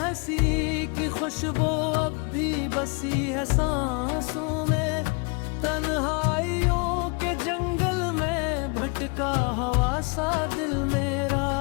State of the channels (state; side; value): quieter; right; 33.0 dB